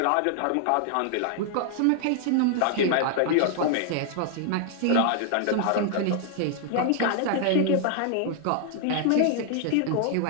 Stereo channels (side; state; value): both; different; correlation 0.00